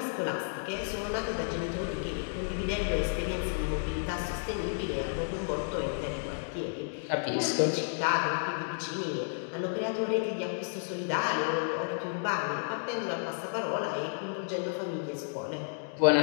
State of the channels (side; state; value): right; silent; digital silence